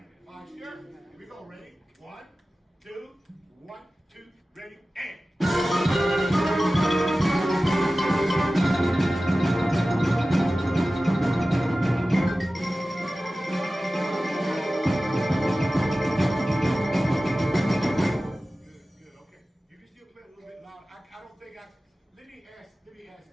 Posture. Here we go. Ready? 1, 2, 1, 2, ready, and. Let me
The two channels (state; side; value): normal; both; correlation 0.96